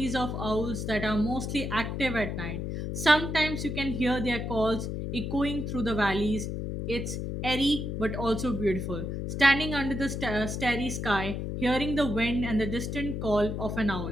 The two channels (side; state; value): left; noise; hum, 4 dB below the sound